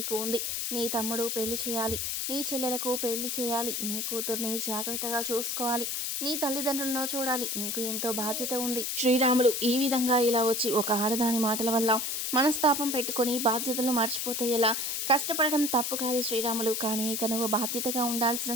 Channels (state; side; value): noise; left; hiss, 1 dB below the sound